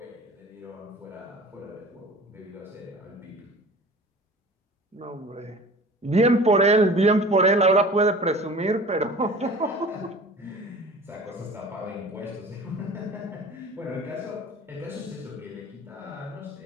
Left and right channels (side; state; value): both; normal; correlation 0.42